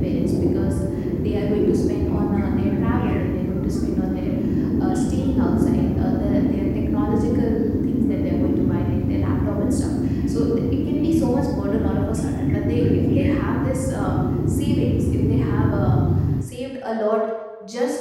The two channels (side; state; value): both; identical; correlation 1.00